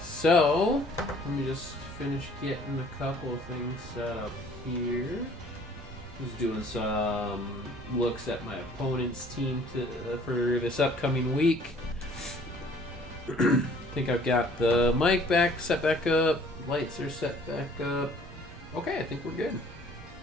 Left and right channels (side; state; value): both; normal; correlation 0.55